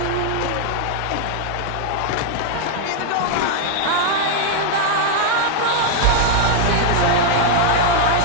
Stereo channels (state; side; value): different; both; correlation 0.00